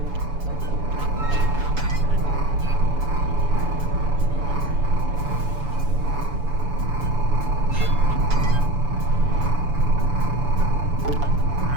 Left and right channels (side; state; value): left; late; 7.0 ms